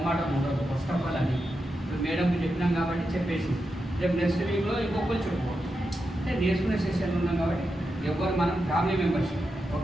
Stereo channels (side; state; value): both; normal; correlation 0.87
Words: ఉండదు. ఫస్ట్ ఆఫ్ ఆల్ అని ఇప్పుడు మేడంకి చెప్పినాం కాబట్టి చెప్పేసి రేపు నెక్స్ట్ వీక్లో ఇంకొకరు చెప్పుకోవచ్చు. అంటే నేర్చుకునే సెషన్లో ఉన్నాం కాబట్టి ఎవరు మనం family membership.